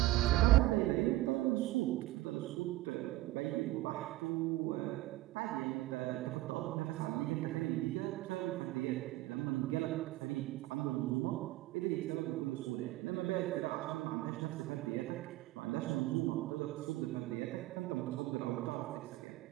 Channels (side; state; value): left; quieter; 17.4 dB